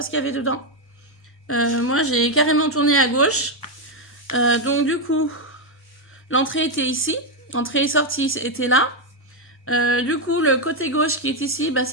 ce qu'il y avait dedans. Moi, j'ai carrément tourné à gauche. Donc, du coup, l'entrée était ici. Entrée et sortie était là. Du coup, le côté gauche qui est ici, bah,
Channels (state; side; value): normal; both; correlation 0.03